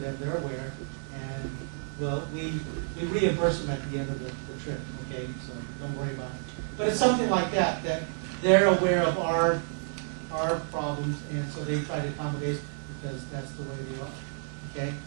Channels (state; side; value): silent; left; 58 dB below the other